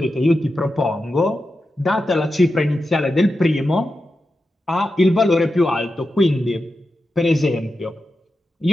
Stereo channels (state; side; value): normal; both; correlation 0.90